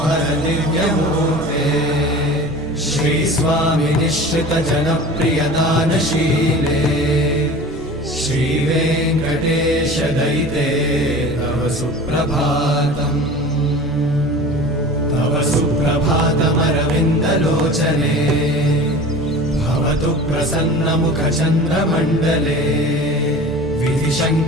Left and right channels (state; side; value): normal; both; correlation 0.38